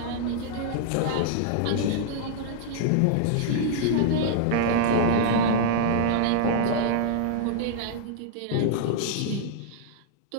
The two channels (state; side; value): different; both; correlation -0.01